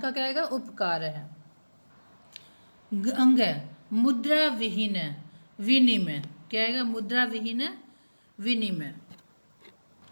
क्या आएगा? उपकार है। अंग मुद्रा विहीन विनिमय, क्या आएगा? मुद्रा विहीन विनिमय।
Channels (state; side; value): inverted; both; correlation -1.00